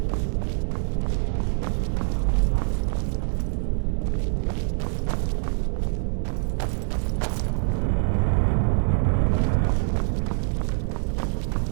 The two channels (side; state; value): left; silent; digital silence